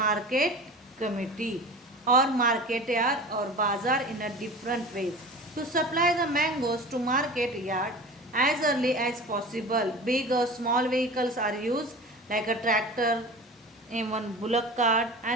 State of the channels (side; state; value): both; normal; correlation 0.36